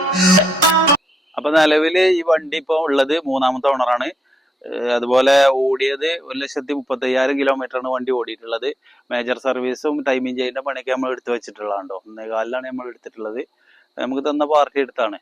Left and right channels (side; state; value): both; normal; correlation 0.83